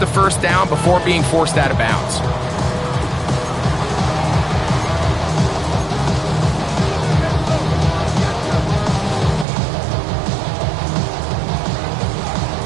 first down before being forced out of bounds.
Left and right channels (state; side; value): drops out; left; at 9.5 s